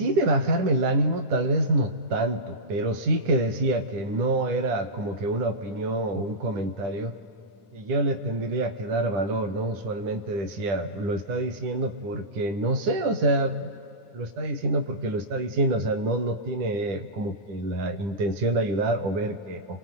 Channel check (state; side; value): late; left; 10 ms